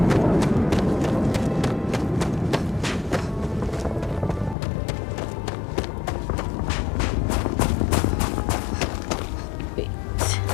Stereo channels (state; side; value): drops out; right; at 4.5 s